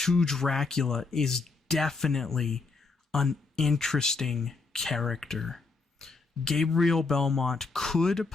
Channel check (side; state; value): right; quieter; 4.1 dB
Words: Dracula is definitely an interesting character. Gabriel Belmont could